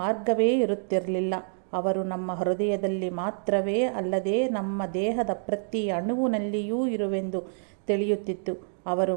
ಮಾರ್ಗವೇ ಇರುತ್ತಿರಲಿಲ್ಲ. ಅವರು ನಮ್ಮ ಹೃದಯದಲ್ಲಿ ಮಾತ್ರವೇ ಅಲ್ಲದೆ ನಮ್ಮ ದೇಹದ ಪ್ರತಿ ಅಣುವಿನಲ್ಲಿಯೂ ಇರುವೆಂದು ತಿಳಿಯುತ್ತಿತ್ತು. ಅವರು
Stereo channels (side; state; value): left; silent; digital silence